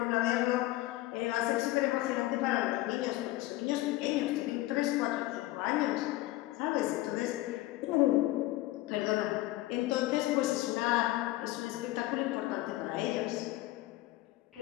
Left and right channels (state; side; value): quieter; right; 17.4 dB